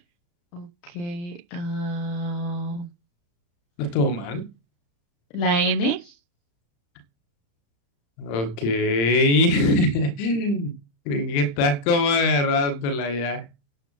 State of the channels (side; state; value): right; late; 35 ms